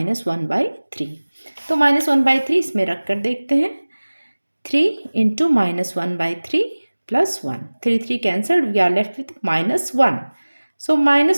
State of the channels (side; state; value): both; inverted; correlation -1.00